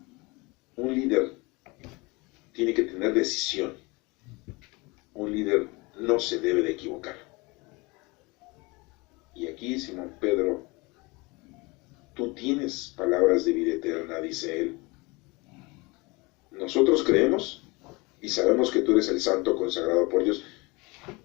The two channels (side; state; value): right; quieter; 25.4 dB